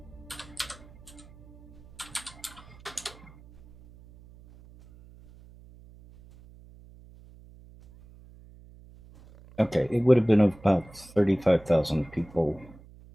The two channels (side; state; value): right; noise; hum, 22 dB below the sound